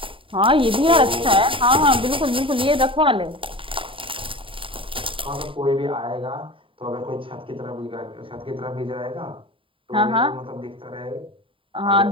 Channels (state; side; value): late; left; 0.25 ms